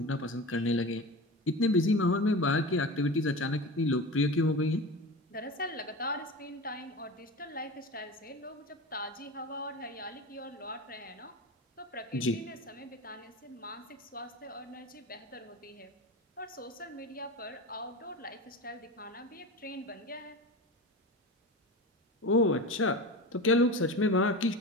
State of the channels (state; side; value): normal; both; correlation 0.29